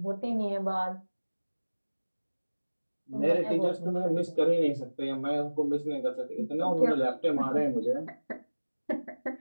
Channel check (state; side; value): inverted; both; correlation -1.00